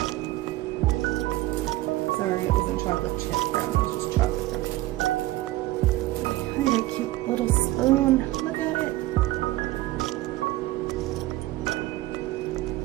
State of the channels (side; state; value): left; quieter; 17.2 dB